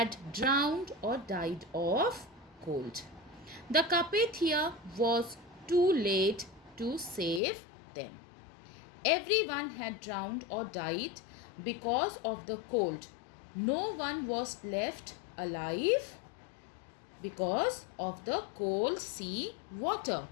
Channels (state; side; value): drops out; right; at 7.4 s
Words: drowned or died of cold. The Carpathia was too late to save them. Everyone had drowned or died because of the cold. No one was left alive because of the cold sea water.